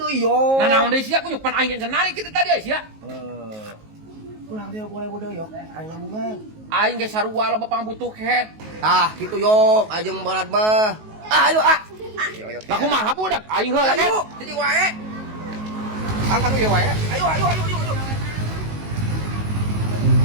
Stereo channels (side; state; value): left; late; 19 ms